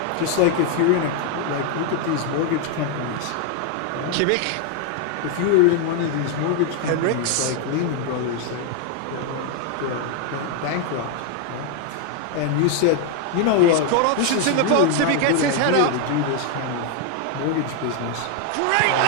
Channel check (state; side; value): different; both; correlation 0.01